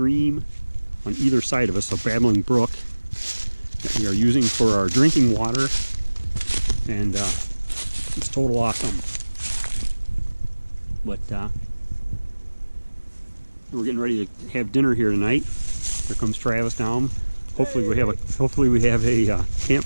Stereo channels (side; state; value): both; inverted; correlation -1.00